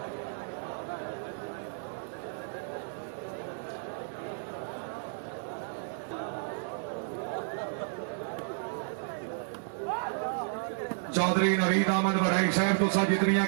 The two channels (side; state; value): left; silent; digital silence